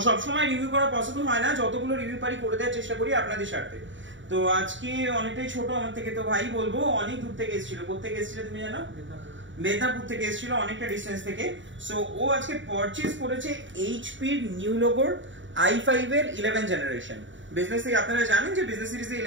সব সময় রিভিউ করা পসিবল হয় না, যতগুলো রিভিউ পারি করে দেওয়ার চেষ্টা করি আপনাদের স্বার্থে। তো আজকে অনেকটাই ছোট আমার থেকে, তো ভাই বলবো অনেক দূর থেকে এসেছিল। কোথা থেকে এসেছিল তুমি জানো? মেদিনীপুর থেকে এসেছিল, অনেকটা ডিস্টেন্স থেকে। সো ও আজকে পারচেজ করেছে এইচপি এর নিউ লোগোর i5 এর 11 জেনারেশন। বিজনেস থেকে আপনারা জানেন যে বিজনেস সিরিজে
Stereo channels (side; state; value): left; late; 0.55 ms